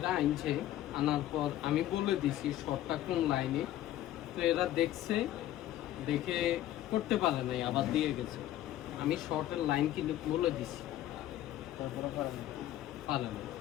আনছে, আনার পর আমি বলে দিছি শর্টটা কোন লাইনে। তো এরা দেখছে, দেখে করতে পারে নাই, আবার দিয়ে গেছে। আমি শর্টের লাইন কিন্তু বলে দিছি, তারপরে পারে না।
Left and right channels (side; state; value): right; quieter; 13.4 dB